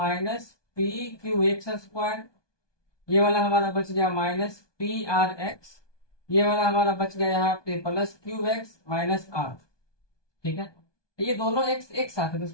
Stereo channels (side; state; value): right; late; 1.2 ms